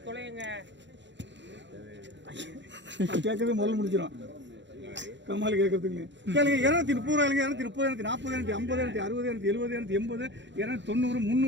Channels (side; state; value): left; late; 0.53 ms